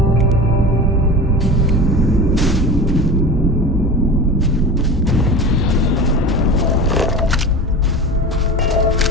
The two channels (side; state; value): both; normal; correlation 0.31